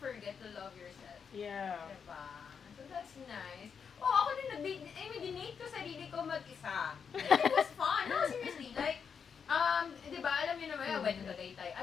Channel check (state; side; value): quieter; right; 6.6 dB